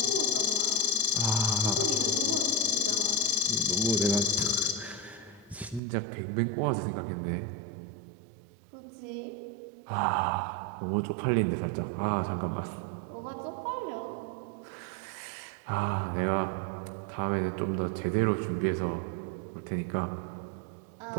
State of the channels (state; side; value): drops out; left; at 5.8 s